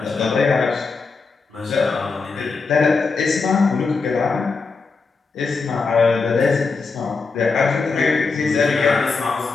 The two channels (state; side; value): quieter; right; 4.5 dB